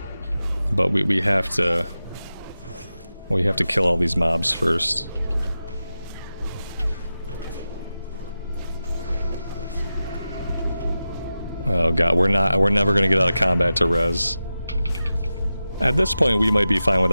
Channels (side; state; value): both; inverted; correlation -0.92